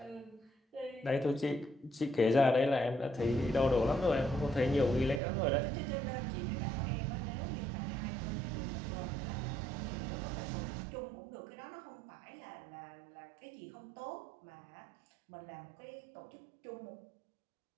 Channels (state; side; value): drops out; left; at 5.2 s